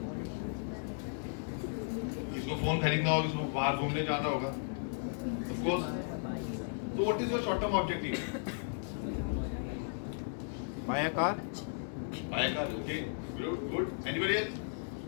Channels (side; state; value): right; silent; digital silence